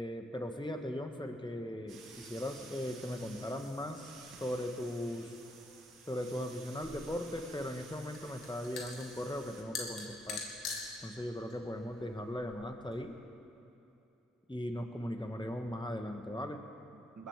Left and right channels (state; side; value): normal; both; correlation 0.77